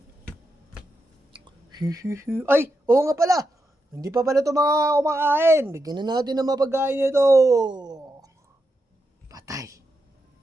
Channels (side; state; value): both; normal; correlation 0.85